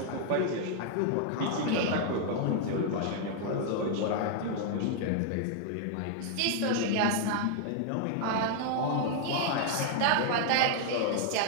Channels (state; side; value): different; both; correlation 0.00